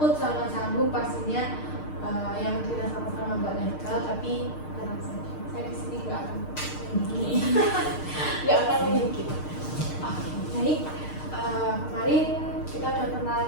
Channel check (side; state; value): right; late; 6.6 ms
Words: sama canggung pastinya yang tidak sama-sama Mbak legal, tapi tenang saja. Saya di sini nggak akan nggak akan mungkin. Oke, baik. Kemarin